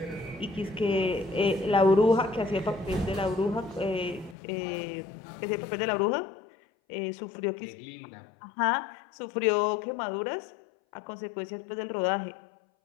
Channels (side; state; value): right; drops out; at 4.4 s